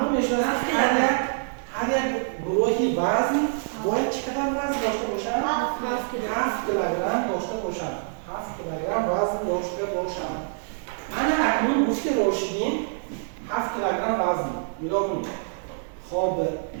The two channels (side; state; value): left; silent; digital silence